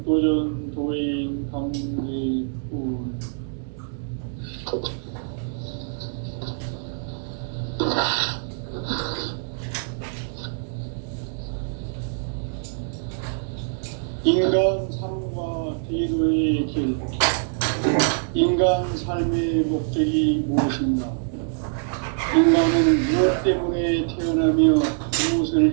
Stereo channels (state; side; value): silent; left; digital silence